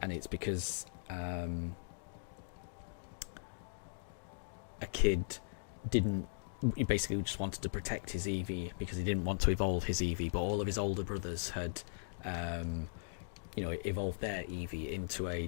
it's because a kid he basically just wanted to protect his Eevee because he didn't want to evolve his Eevee, but all of his older brothers had evolved their Eevee into a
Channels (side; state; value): right; silent; digital silence